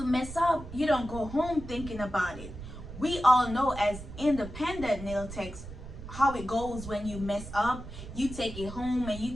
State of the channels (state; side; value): noise; right; rumble, 12 dB below the sound